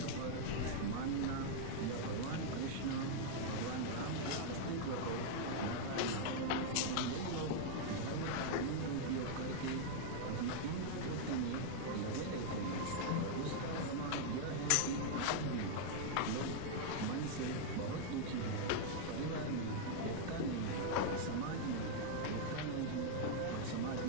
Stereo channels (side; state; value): both; different; correlation -0.01